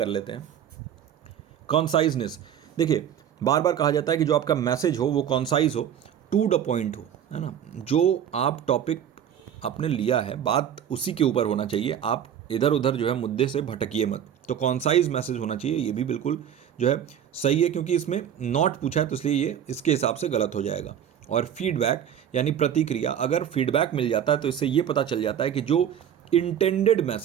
लेते हैं। कॉन्साइजनेस, देखिए बार बार कहा जाता है कि जो आपका मैसेज हो वो कॉन्साइज हो, टू द पॉइंट हो, है ना। जो आप टॉपिक आपने लिया है, बात उसी के ऊपर होना चाहिए, आप इधर उधर जो है मुद्दे से भटकिए मत। तो कॉन्साइज मैसेज होना चाहिए, ये भी बिल्कुल जो है सही है, क्योंकि इसमें नॉट पूछा है तो इसलिए ये इसके हिसाब से गलत हो जाएगा। और फीडबैक यानी प्रतिक्रिया, अगर फीडबैक मिल जाता है तो इससे ये पता चल जाता है कि जो इंटेंडेड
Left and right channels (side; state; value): left; quieter; 9.4 dB